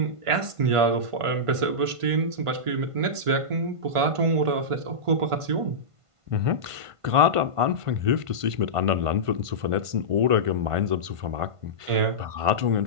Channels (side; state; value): left; late; 1.5 ms